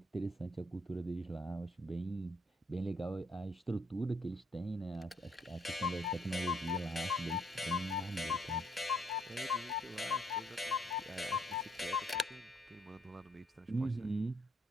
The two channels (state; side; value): normal; both; correlation 0.68